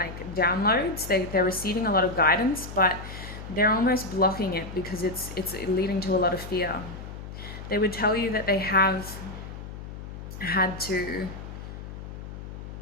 downloads. They're receiving a lot of guidance, but they're almost blocking it because it's leading to a lot of fear. They would tell you that they have had to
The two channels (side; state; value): left; noise; hum, 11 dB below the sound